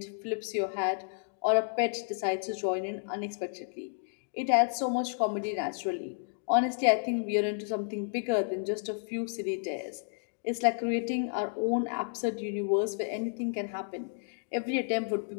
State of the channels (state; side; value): silent; right; digital silence